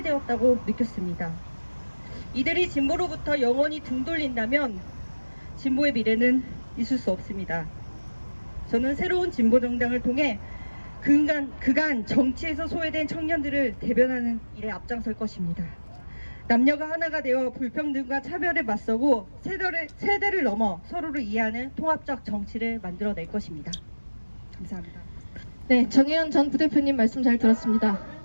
느꼈습니다. 이들이 진보로부터 영원히 등 돌린다면 진보의 미래는 있을 수 없습니다. 저는 새로운 진보정당을 통해 그간 정치에서 소외된 청년들을 대변하는 일에 앞장설 것입니다. 남녀가 하나가 되어 불평등과 차별에 맞서고 세대를 넘어 서로를 이해하는 통합적 정치를 만들어낼 것입니다. 감사합니다. 네, 정혜연 전 부대표님 말씀 잘 들었습니다.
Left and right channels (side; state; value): both; inverted; correlation -1.00